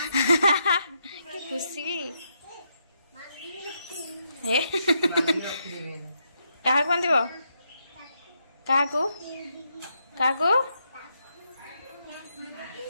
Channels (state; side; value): inverted; both; correlation -0.79